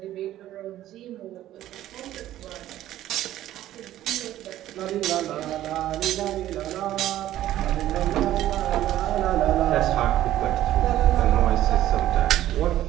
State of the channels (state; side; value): quieter; left; 13.4 dB